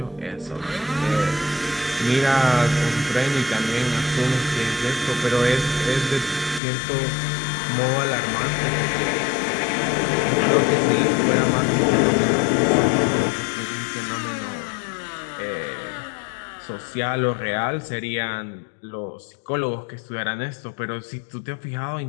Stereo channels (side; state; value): right; drops out; at 6.6 s